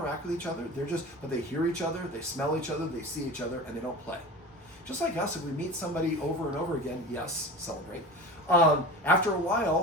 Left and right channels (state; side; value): normal; both; correlation 0.32